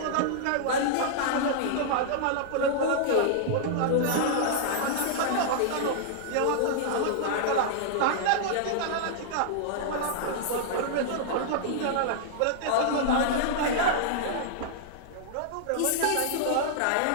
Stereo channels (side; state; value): both; different; correlation -0.01